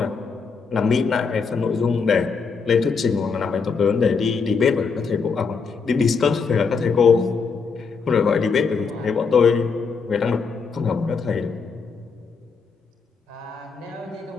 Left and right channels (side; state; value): right; quieter; 5.2 dB